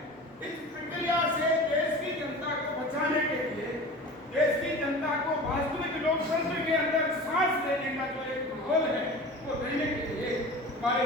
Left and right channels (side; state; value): both; normal; correlation 0.36